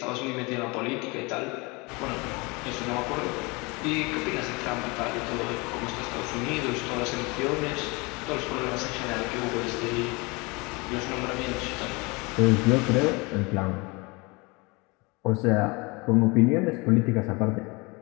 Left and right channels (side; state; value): right; quieter; 26.9 dB